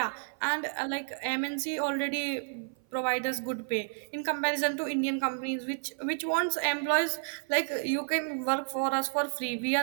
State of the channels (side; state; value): left; silent; 55 dB below the other